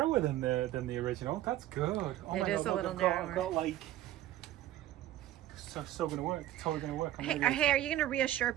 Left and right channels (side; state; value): left; quieter; 13.8 dB